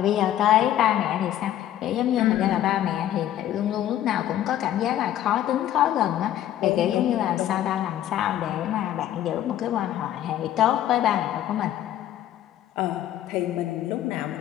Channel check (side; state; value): right; quieter; 12.1 dB